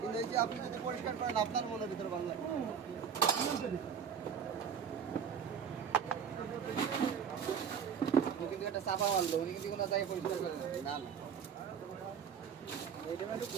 এই যে আপনি যদি পরিষ্কার করেন আপনার মনের ভিতরে ভালো লাগে। আপনি কিন্তু একটা চাপা মারলো, উনি কিন্তু কোনো জায়গায় পরিষ্কার করেন না। না এটা একটু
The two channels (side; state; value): left; quieter; 7.3 dB